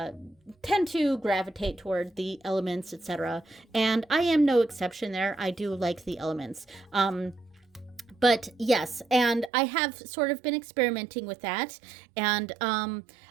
gravitate toward the elements, etc. And I am no exception there. I do like the elements. But yes, and I have sort of been experimenting with that. And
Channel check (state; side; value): drops out; left; at 9.5 s